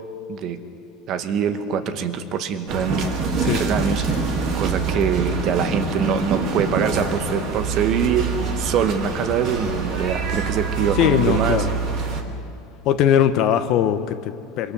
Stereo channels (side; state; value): both; normal; correlation 0.31